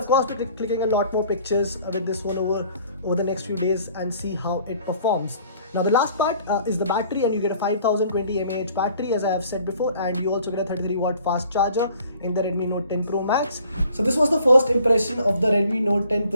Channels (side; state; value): both; inverted; correlation -0.55